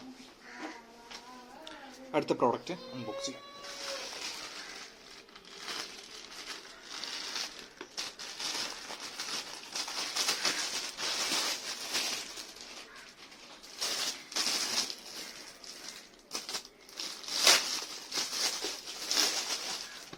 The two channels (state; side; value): identical; both; correlation 1.00